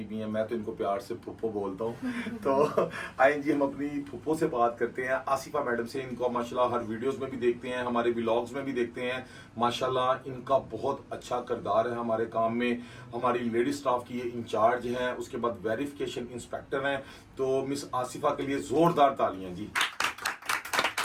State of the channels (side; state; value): both; identical; correlation 1.00